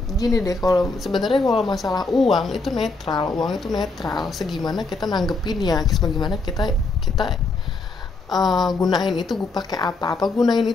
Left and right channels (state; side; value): quieter; right; 3.6 dB